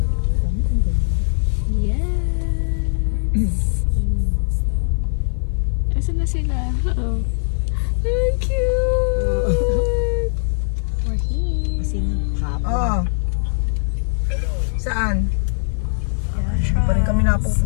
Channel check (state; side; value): silent; right; 55 dB below the other